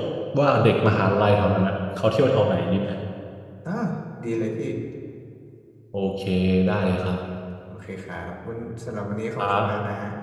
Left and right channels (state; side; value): identical; both; correlation 1.00